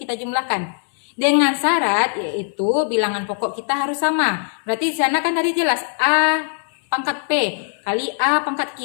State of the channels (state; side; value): silent; right; 65 dB below the other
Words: jumlahkan. Dengan syarat yaitu bilangan pokok kita harus sama. Berarti di sana kan tadi jelas A pangkat P kali A pangkat